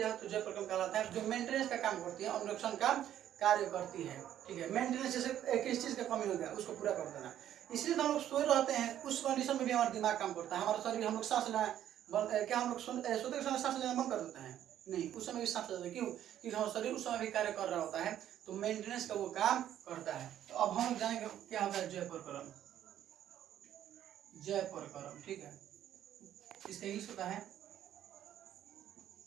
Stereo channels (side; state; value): left; quieter; 11.2 dB